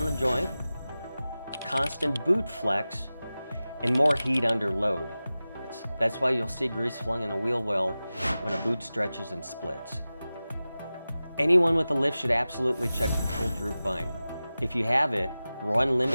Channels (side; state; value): both; inverted; correlation -0.96